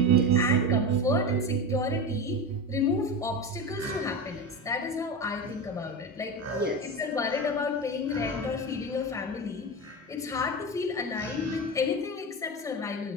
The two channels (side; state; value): both; normal; correlation 0.23